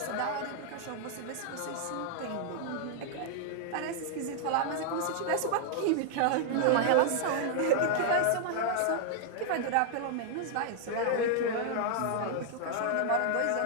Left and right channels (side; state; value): both; different; correlation -0.01